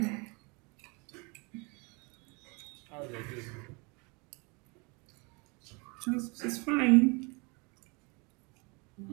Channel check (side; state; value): left; quieter; 30.0 dB